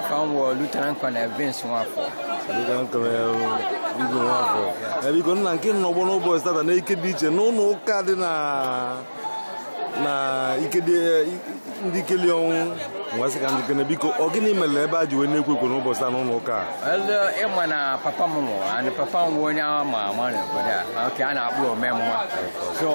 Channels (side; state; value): both; inverted; correlation -1.00